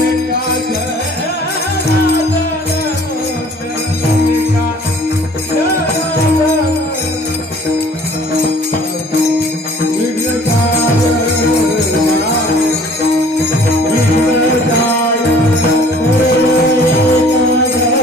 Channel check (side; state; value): both; normal; correlation 0.53